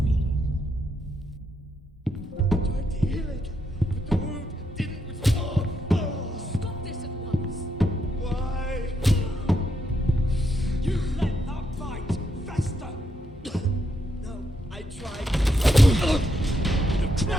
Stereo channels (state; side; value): normal; both; correlation 0.80